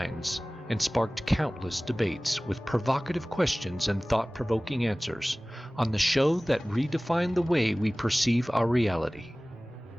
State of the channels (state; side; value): normal; both; correlation 0.98